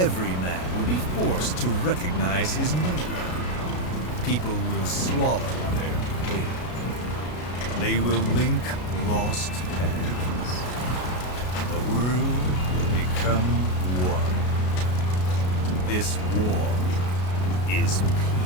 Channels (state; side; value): late; right; 33 ms